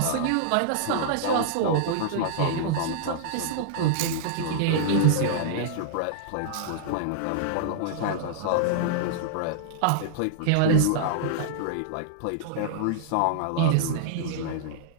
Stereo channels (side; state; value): both; different; correlation -0.02